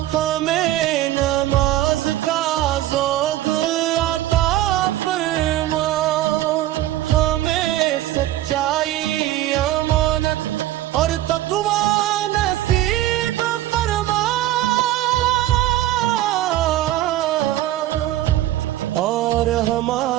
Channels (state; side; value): quieter; left; 14.4 dB